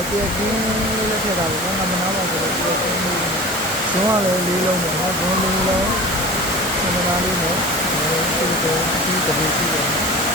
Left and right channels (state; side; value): normal; both; correlation 0.36